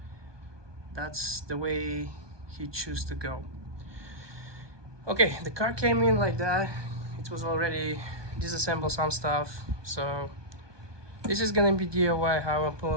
That's the way he chose to go. Okay, the car came in like that. It was already disassembled some stuff, so this is gonna be DIY how I'm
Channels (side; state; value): left; late; 1.2 ms